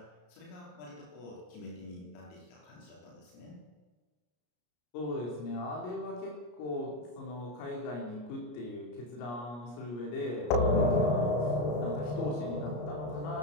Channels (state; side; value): late; right; 33 ms